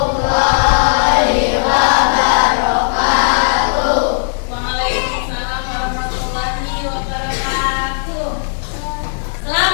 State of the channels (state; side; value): silent; right; 61 dB below the other